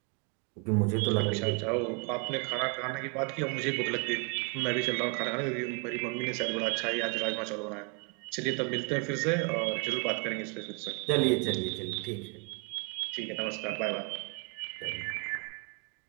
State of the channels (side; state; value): left; quieter; 35.7 dB